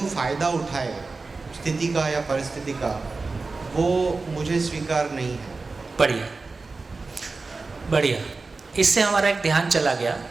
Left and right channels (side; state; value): left; quieter; 3.9 dB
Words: फ़ायदा उठाए स्थिति का या परिस्थिति का, वो मुझे स्वीकार नहीं है। बढ़िया बढ़िया, इससे हमारा एक ध्यान चला गया।